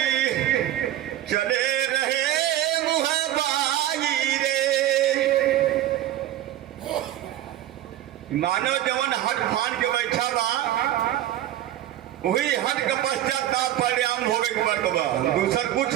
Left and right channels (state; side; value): quieter; left; 13.0 dB